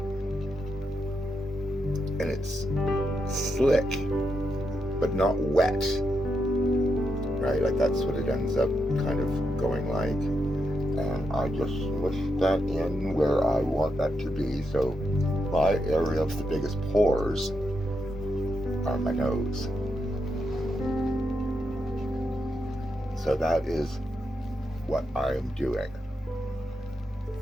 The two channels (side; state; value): both; normal; correlation 0.84